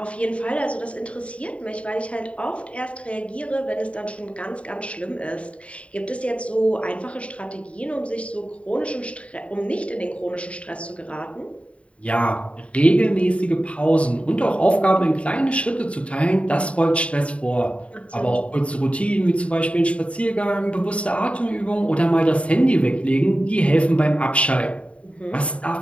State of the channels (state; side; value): late; right; 0.063 ms